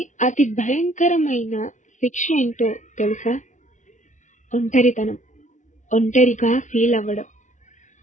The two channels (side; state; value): right; late; 0.36 ms